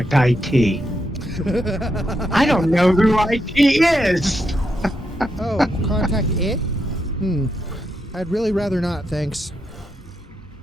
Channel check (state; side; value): normal; both; correlation 0.82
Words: IT. I don't know who IT is. Oh, contact it? I'd really rather not, thanks.